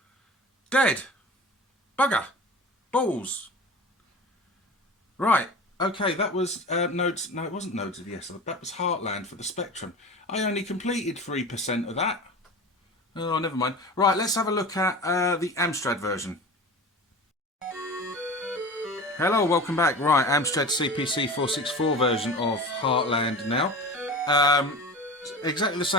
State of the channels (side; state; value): both; normal; correlation 0.34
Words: Dead. Bugger. Balls. Right. Okay, that was Nodes... No, it wasn't Nodes of Yesod. That was Heartland for the Spectrum. I only completed 3% of that. Oh, never mind. Right, let's have a look at the Amstrad version. Hello, welcome back. Right, Amstrad CPC 464 version of Heartland now. Exactly the